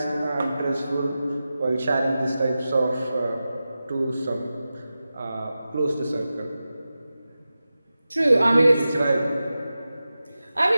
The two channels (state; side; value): inverted; both; correlation -0.94